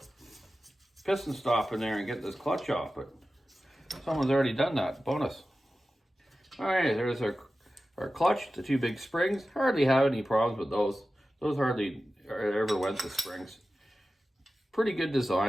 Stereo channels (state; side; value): normal; both; correlation 0.94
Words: piston stop in there and get this clutch off, but someone's already done that. Bonus. All right, there's our clutch, the 2 big springs. Hardly have any problems with those. Those hardly ever went to springs. Pretty good